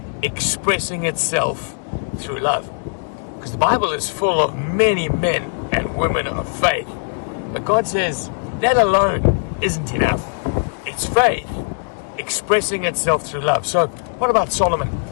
expressing itself through love." Because the Bible is full of many men and women of faith. But God says that alone isn't enough. It's faith expressing itself through love. So what about Solomon?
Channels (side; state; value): right; silent; digital silence